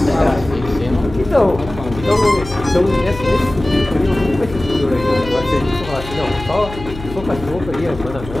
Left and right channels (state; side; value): noise; left; hum, 13 dB below the sound